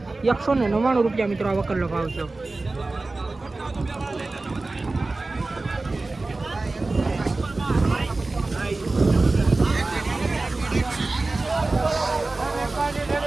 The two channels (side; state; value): left; quieter; 3.3 dB